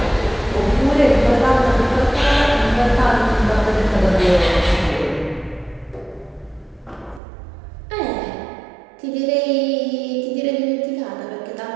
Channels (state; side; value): drops out; left; at 7.2 s